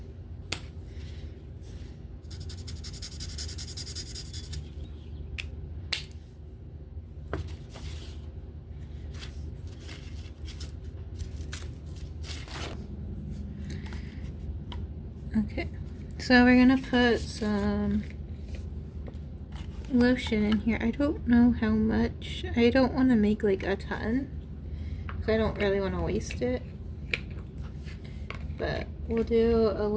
Okay, so we're gonna put some lotion in here. I don't know how much. I don't want to make like a ton, so I don't really want to waste it. But we'll do a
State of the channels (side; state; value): both; identical; correlation 1.00